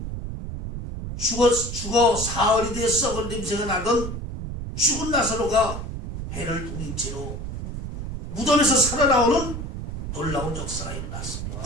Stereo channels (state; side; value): noise; right; rumble, 6 dB below the sound